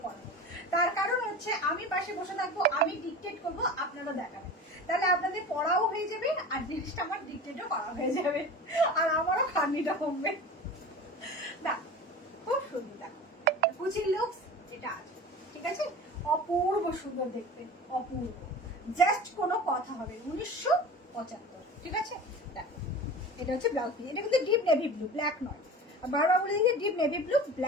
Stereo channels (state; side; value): normal; both; correlation 0.35